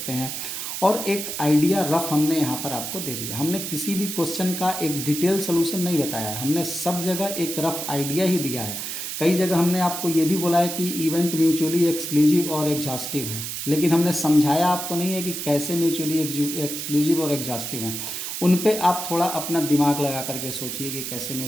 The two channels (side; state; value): right; noise; hiss, 5 dB below the sound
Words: हैं, और एक आइडिया रफ हमने यहाँ पर आपको दे दिया। हमने किसी भी क्वेश्चन का एक डिटेल सोल्यूशन नहीं बताया है, हमने सब जगह एक रफ आइडिया ही दिया है। कई जगह हमने आपको ये भी बोला है कि इवेंट म्यूचुअली एक्सक्लूसिव और एग्जॉस्टिव है, लेकिन हमने समझाया आपको नहीं है कि कैसे म्यूचुअली एक्सक्लूसिव और एग्जॉस्टिव हैं। उन पे आप थोड़ा अपना दिमाग लगा करके सोचिए कि कैसे